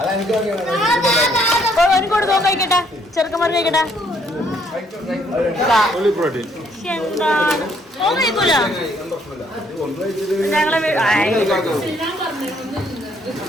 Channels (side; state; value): both; normal; correlation 0.67